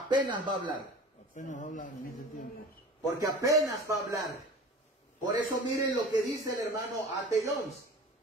va a hablar? Apenas va a hablar en ese tiempo. Porque apenas va a hablar. Por eso miren lo que dice el hermano A.T. Jones.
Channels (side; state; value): both; normal; correlation 0.39